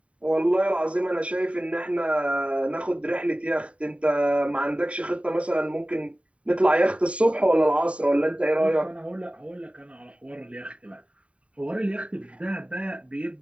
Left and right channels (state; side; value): late; left; 0.064 ms